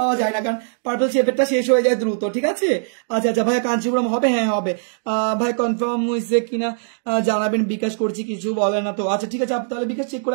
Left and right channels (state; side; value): silent; left; digital silence